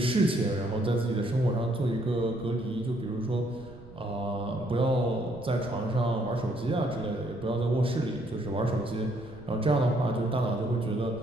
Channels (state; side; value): noise; right; rumble, 19 dB below the sound